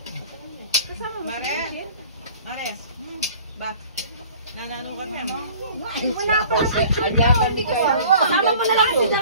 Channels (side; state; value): both; inverted; correlation -0.48